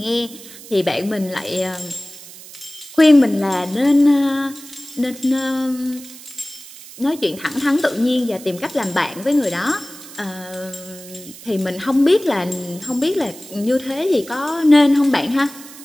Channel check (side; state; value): right; noise; hiss, 17 dB below the sound